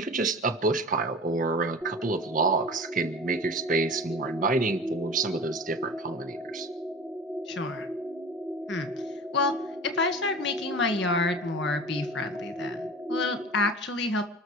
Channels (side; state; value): both; normal; correlation 0.37